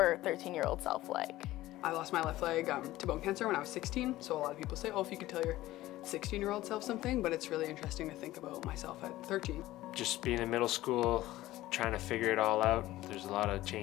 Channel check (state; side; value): quieter; right; 16.3 dB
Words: 13-year-old self like? I lost my left leg to bone cancer when I was 16, so a lot of people say, oh, if you could tell your 16-year-old self something, but it's really interesting to think about myself at 13. Just being in middle school, trying to figure it all out. There's a lot of